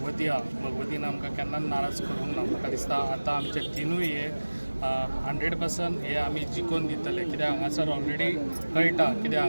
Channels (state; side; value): inverted; both; correlation -1.00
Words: आहा भगवतीन आमकां केन्नाच नाराज करूंक ना। म्हाका दिसता आतां आमचे 3 हे 100% हे आमी जिखून दितले, कित्याक हांगासर ऑलरेडी कळटा, कित्याक